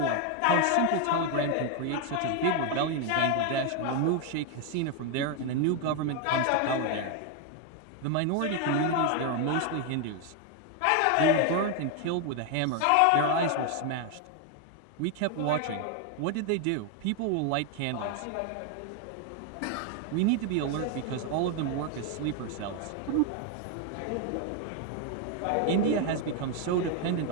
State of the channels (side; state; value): both; different; correlation 0.01